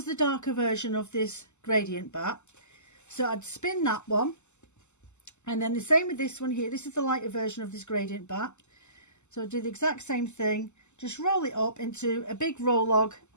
the darker version of this gradient batt. So I'd spin that one, and then the same with this one here. This is the lighter version of this gradient batt. So I'd do the exact same thing, just roll it up into a big roll log,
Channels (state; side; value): late; right; 0.83 ms